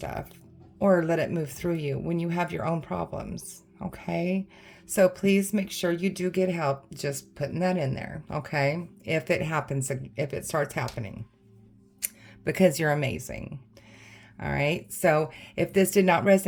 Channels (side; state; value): both; identical; correlation 1.00